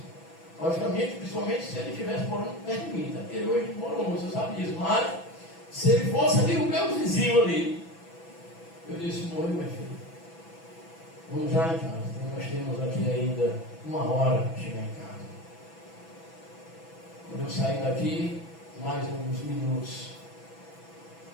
Logicamente, principalmente se ele estivesse morando perto de mim, tá? Porque hoje mora longe, você sabe disso. Mas se ele fosse ali o meu vizinho ali, eu disse, morreu, minha filha. Vamos já em casa. Nós temos aqui ainda 1 hora para chegar em casa. Quando eu sair daqui, mais uns minutos.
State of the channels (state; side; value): late; right; 6.0 ms